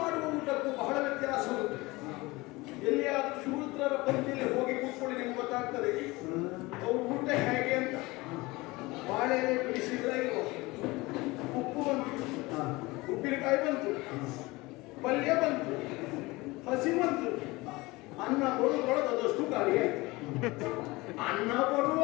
ಮಾಡುವ ಊಟಕ್ಕೂ ಬಹಳ ವ್ಯತ್ಯಾಸ ಉಂಟು. ಎಲ್ಲಿಯಾದ್ರೂ ಶೂದ್ರರ ಪಂಕ್ತಿಯಲ್ಲಿ ಹೋಗಿ ಕೂತ್ಕೊಳ್ಳಿ, ನಿಮ್ಗೆ ಗೊತ್ತಾಗ್ತದೆ ಅವ್ರ ಊಟ ಹೇಗೆ ಅಂತ. ಬಾಳೆ ಎಲೆ ಬಿಡಿಸಿದ್ರೆ ಇಲ್ವ, ಉಪ್ಪು ಬಂತು, ಉಪ್ಪಿನಕಾಯಿ ಬಂತು, ಪಲ್ಯ ಬಂತು, ಹಸಿ ಬಂತು, ಅನ್ನ ಬರುವುದರೊಳಗೆ ಅದಷ್ಟು ಖಾಲಿ ಆಯ್ತು. ಅನ್ನ ಬರುವ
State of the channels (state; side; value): quieter; right; 22.1 dB